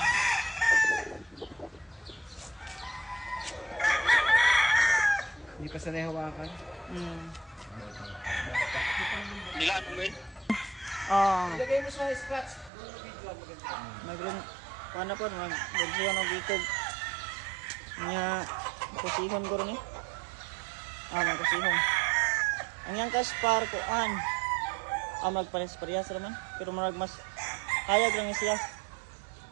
Hindi pa sanay hawakan. Nilaan mo ba Ilagay mo sa scratch. Doon video maganda. Paano po, mag-bersihan ng bitog. Nga, kusihon ko rin eh. Magkusihon. Ang yang kaspar ko, magpares-parehas naman. Pero marag mas hayag lang siya.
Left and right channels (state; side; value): drops out; left; at 12.7 s